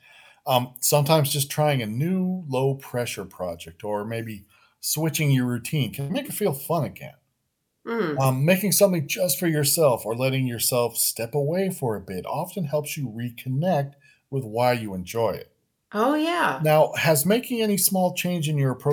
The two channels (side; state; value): both; identical; correlation 1.00